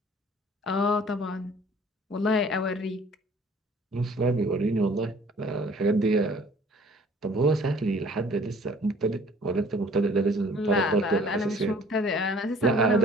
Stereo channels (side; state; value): both; normal; correlation 0.53